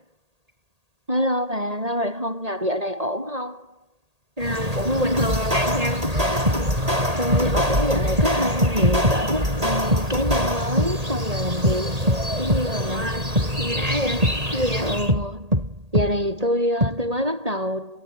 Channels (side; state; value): left; late; 1.8 ms